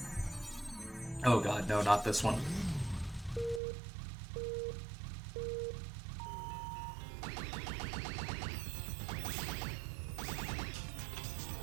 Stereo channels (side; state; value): left; drops out; at 3.6 s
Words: Oh god, no, not this one.